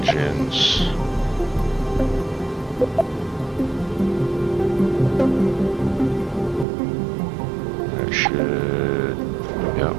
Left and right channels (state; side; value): drops out; left; at 6.7 s